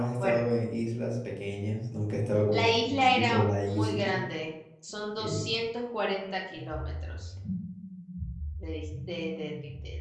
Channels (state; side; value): identical; both; correlation 1.00